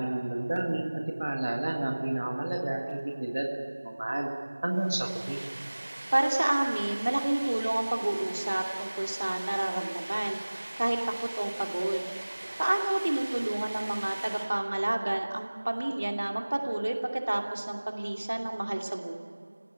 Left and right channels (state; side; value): inverted; both; correlation -1.00